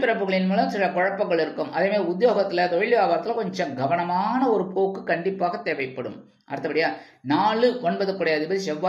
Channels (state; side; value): identical; both; correlation 1.00